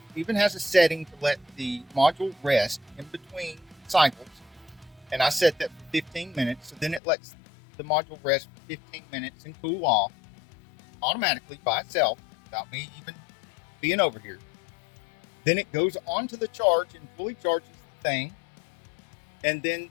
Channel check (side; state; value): right; drops out; at 7.0 s